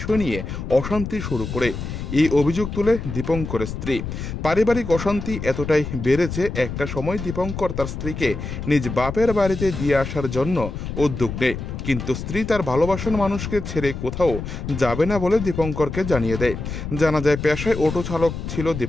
নিয়ে অশান্তি শুরু করে। এই অভিযোগ তুলে দীপঙ্করের স্ত্রী। পারিবারিক অশান্তি এতটাই বেড়েছে, একটা সময় দীপঙ্কর তার স্ত্রীকে নিজ বাপের বাড়িতে দিয়ে আসার জন্য উদ্যোগ নেয়, কিন্তু স্ত্রী তার ভালোবাসার মানুষকে ছেড়ে কোথাও যাবে না বলে দীপঙ্করকে জানিয়ে দেয়। জানা যায়, পেশায় অটো চালক ছিল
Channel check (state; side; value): noise; left; rumble, 6 dB below the sound